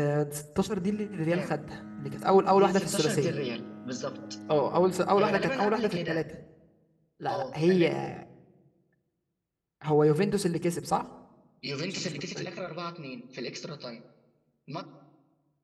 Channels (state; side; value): identical; both; correlation 1.00